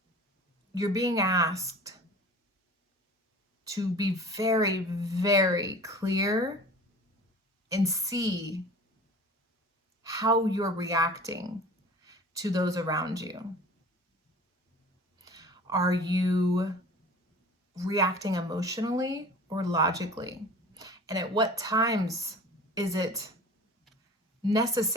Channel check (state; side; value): normal; both; correlation 0.41